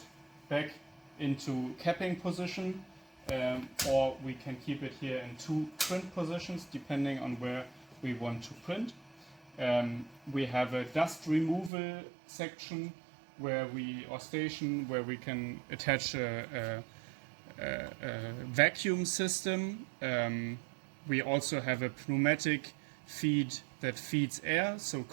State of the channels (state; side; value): drops out; left; at 11.7 s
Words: back into capping position, or we can keep it here in two print positions depending on where we want to print. We have a dust removal section where station where we can attach a vacuum system. We also have a pneumatic feed that feeds air. So